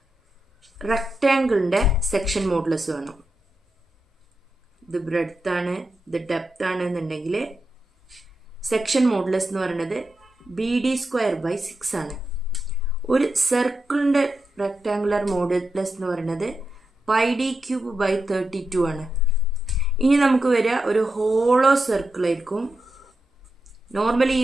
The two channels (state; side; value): normal; both; correlation 0.88